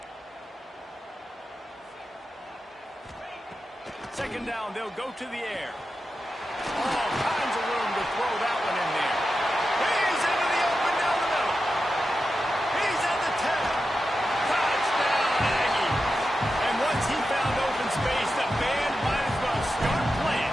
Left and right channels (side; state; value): both; normal; correlation 0.90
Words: Second down, they'll go to the air. All kinds of room to throw that one in there. He's into the open down the middle. He's at the 10. Touchdown, Aggies. And once he found open space, the band might as well start